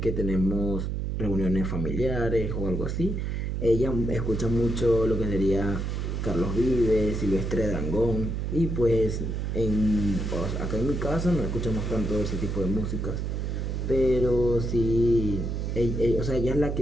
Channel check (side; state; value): right; noise; hum, 2 dB below the sound